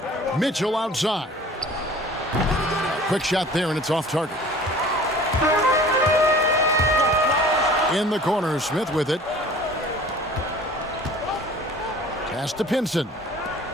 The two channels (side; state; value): both; normal; correlation 0.46